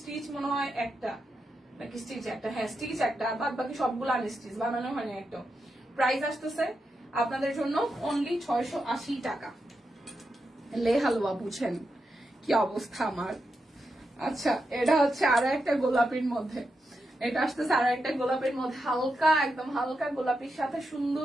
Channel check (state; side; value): normal; both; correlation 0.86